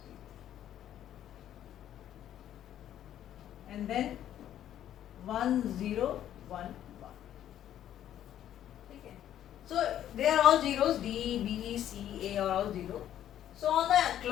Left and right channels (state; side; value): quieter; right; 11.2 dB